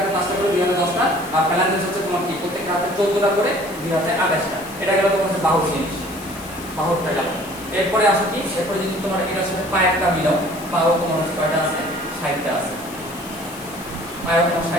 5টা করে, 2 হাতে 10টা। আর ফ্যালাঙ্গিস হচ্ছে তোমার কি প্রত্যেকটা হাতে 14টা করে, 2 হাতে 28টা। এটা গেল তোমার হচ্ছে বাহুর জিনিস, বাহুরটা গেল। এরপরে আসো কি, এরপরে যদি তোমার এটার সাথে পায়েরটা মিলাও, পাও তোমার হচ্ছে কয়টা আছে? 60টা আছে। পায়েও তোমার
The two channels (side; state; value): left; noise; hiss, 17 dB below the sound